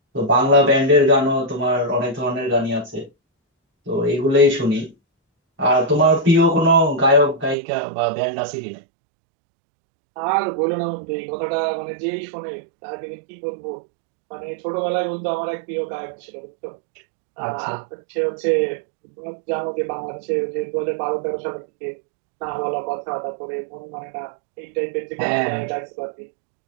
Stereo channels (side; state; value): left; drops out; at 7.6 s